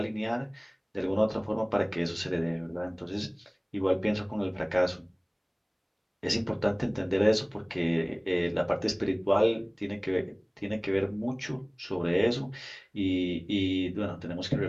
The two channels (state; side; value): identical; both; correlation 1.00